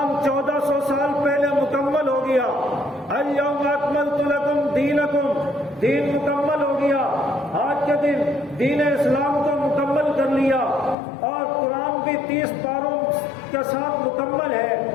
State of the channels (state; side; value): drops out; right; at 11.0 s